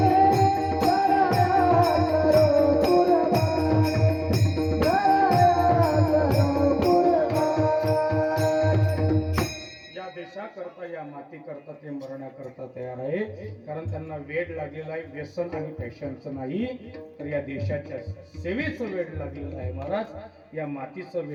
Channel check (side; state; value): both; identical; correlation 1.00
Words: सराया करो कुर्बानी, सराया करो कुर्बानी. या देशाकरता, या मातीकरता ते मरण्याकरता तयार आहे, कारण त्यांना वेड लागलेला आहे, व्यसन आणि फॅशनचं नाही, तर या देशाच्या सेवेचं वेड लागलेलं आहे महाराज, या मातीचं